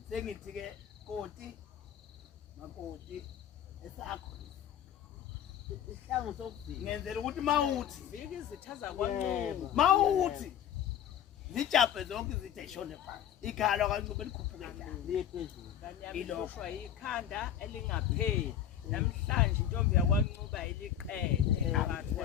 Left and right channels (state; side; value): quieter; right; 9.7 dB